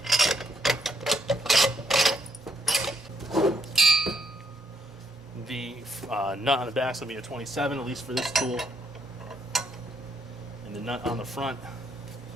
The nut on the back is going to be a 27, at least for this tool. And the nut on the front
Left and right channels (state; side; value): normal; both; correlation 0.75